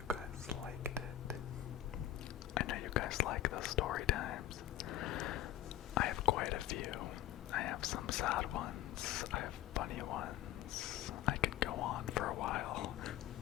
guys liked it. I know you guys like the story times. I have quite a few. I have some sad ones. I have funny ones. I can go on for a while.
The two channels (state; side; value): quieter; right; 12.8 dB